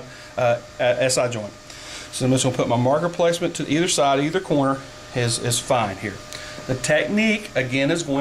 SI joint. So I'm just going to put my marker placement to either side, either corner is fine here. The technique, again, is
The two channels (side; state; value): both; identical; correlation 1.00